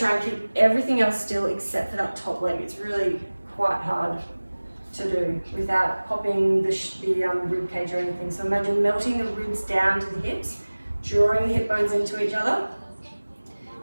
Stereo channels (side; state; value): both; inverted; correlation -1.00